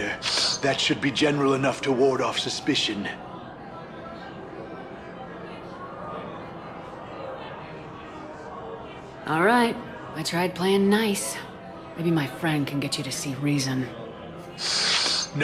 That should be general enough to ward off suspicion. All right. I tried playing nice. Maybe my friend can get you to see reason.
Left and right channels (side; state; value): both; identical; correlation 1.00